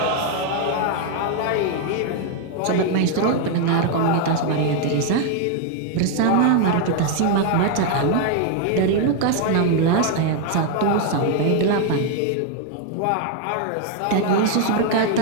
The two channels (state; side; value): different; both; correlation 0.00